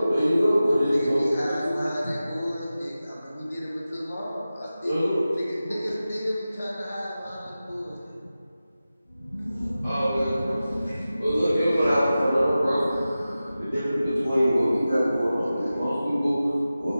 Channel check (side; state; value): both; inverted; correlation -0.95